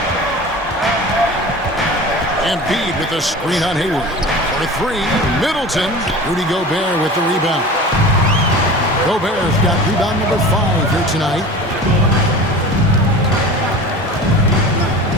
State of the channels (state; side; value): normal; both; correlation 0.36